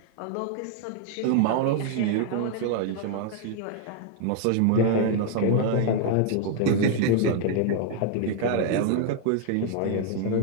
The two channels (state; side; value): different; both; correlation 0.00